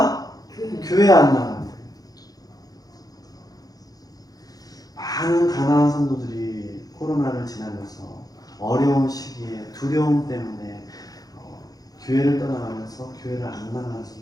교회 안 나간대. 많은 가나안 성도들이 코로나를 지나면서 어려운 시기에 두려움 때문에 교회를 떠나가면서 교회를 안 나가는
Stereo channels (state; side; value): late; right; 0.18 ms